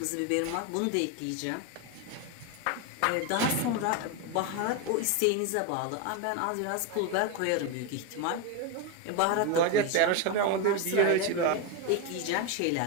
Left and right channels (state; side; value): different; both; correlation 0.03